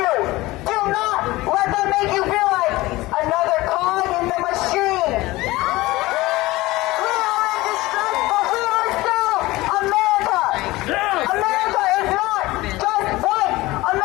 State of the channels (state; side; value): quieter; right; 19.5 dB